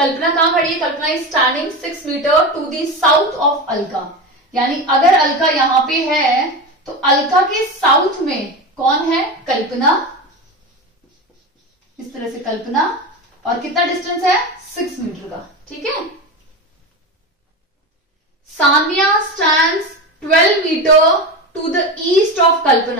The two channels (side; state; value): both; normal; correlation 0.22